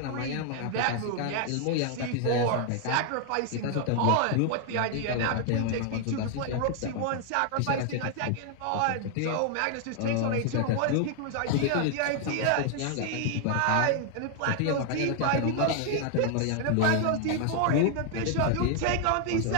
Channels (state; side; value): different; both; correlation 0.00